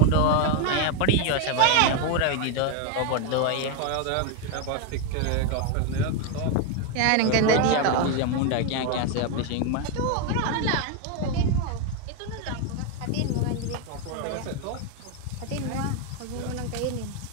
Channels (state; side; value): different; both; correlation 0.01